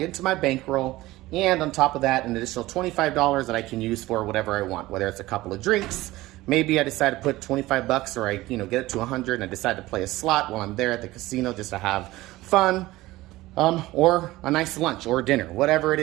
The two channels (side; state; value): left; quieter; 18.1 dB